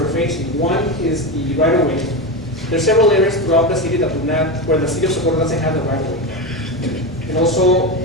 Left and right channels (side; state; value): both; normal; correlation 0.18